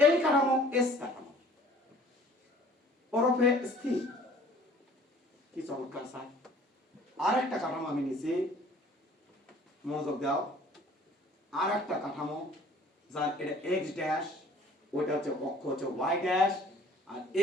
কাঠামো এস কাঠামো, ওরফে স্থির। কি চমৎকার স্যার। আর একটা কাঠামো আমি নিছি, মনোযোগ দাও। আর একটা কাঠামো যার এটা এক্স ড্যাশ, ওইটা হচ্ছে অক্ষ হচ্ছে ওয়াই ড্যাশ, আর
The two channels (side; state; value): both; normal; correlation 0.52